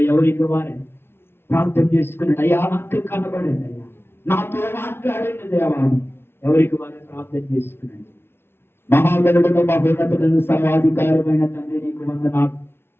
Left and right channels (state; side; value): late; right; 0.11 ms